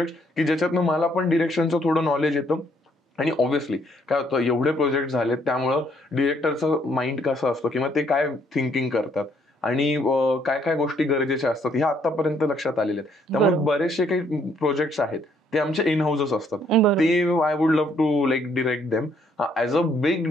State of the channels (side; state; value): both; normal; correlation 0.68